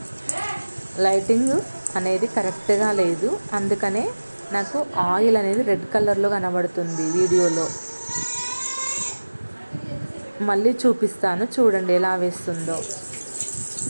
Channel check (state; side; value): inverted; both; correlation -1.00